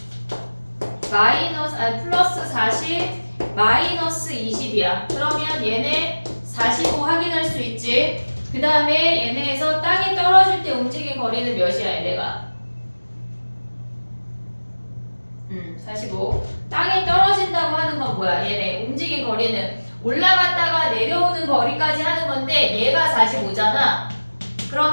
플러스 40 마이너스 20이야. 그러면 얘네 45 확인할 수 있지. 그 다음에 얘네에서 땅에 떨어질 때 움직인 거리는 몇이야 얘네가? 45. 땅에 떨어진다고 하는 건 뭐야? 얘네 움직인 거리는 올라갔다가 내려오는 거리까지 하는 건데 얘가 45잖아.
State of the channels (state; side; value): inverted; both; correlation -1.00